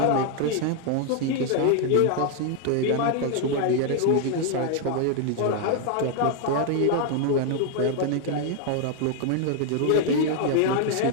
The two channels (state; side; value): different; both; correlation 0.00